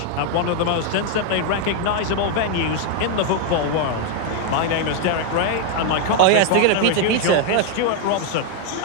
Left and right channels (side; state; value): both; different; correlation 0.00